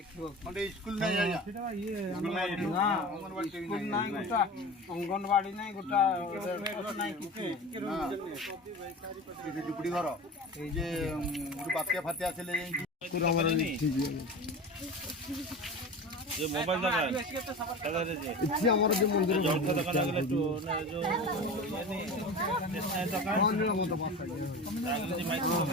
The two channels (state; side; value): normal; both; correlation 0.31